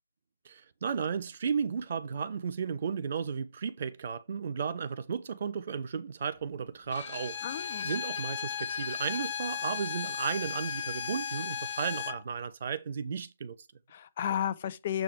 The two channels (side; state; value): both; inverted; correlation -0.67